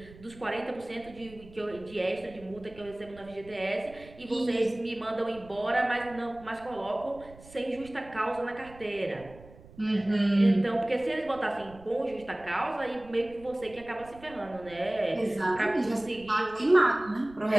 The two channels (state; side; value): noise; right; rumble, 21 dB below the sound